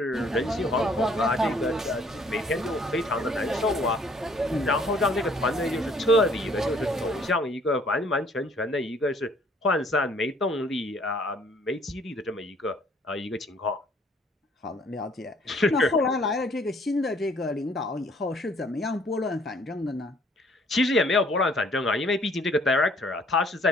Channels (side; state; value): both; normal; correlation 0.60